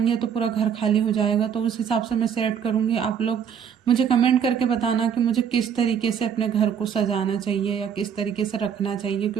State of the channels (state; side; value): quieter; left; 7.9 dB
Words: तो पूरा घर खाली हो जाएगा, तो उस हिसाब से मैं सेट करूँगी। आप लोग मुझे कमेंट करके बताना कि मुझे किस तरीके से अपने घर को सजाना चाहिए या किस तरीके से रखना चाहिए,